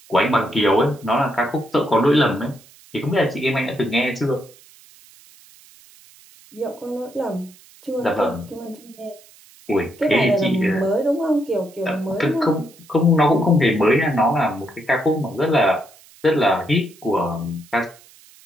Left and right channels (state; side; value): noise; right; hiss, 25 dB below the sound